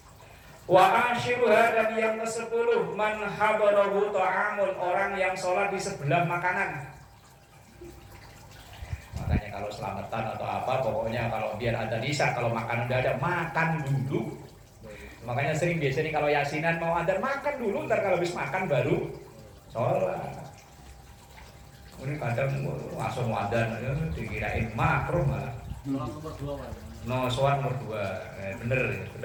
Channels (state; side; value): identical; both; correlation 1.00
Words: Wa ashiruha dan yang ke-10 man habarahu ta'amun, orang yang sholat di sebelah makanan. Makanya kalau selamatan atau apa, pokoknya kalau biar ada nisa, kalau makan udah ada, makan dulu. Makanya sering biasanya kalau yasinan mau ada makan dulu, ntar kalau habis makan baru sholat. Ini kadang langsung wadan, dikirain makruh malah. Sholat nomor 2 Pak. No, sholat nomor 2. Bener